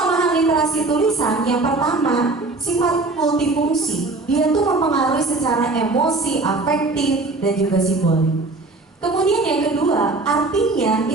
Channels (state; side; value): quieter; left; 3.3 dB